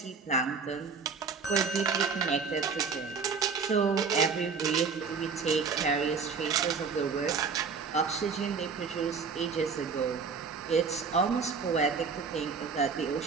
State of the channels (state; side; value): quieter; left; 5.3 dB